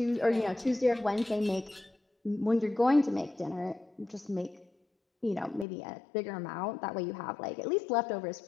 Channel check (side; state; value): right; drops out; at 5.7 s